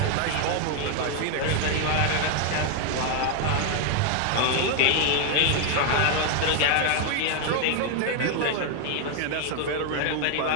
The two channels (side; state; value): both; different; correlation 0.01